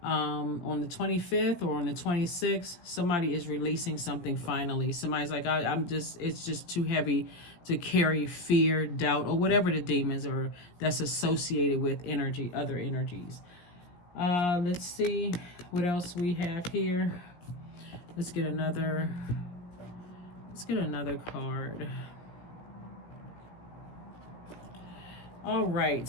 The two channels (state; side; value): late; right; 17 ms